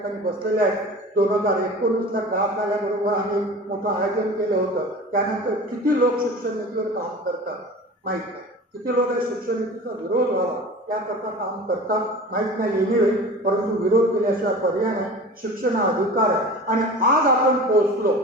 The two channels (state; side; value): normal; both; correlation 0.37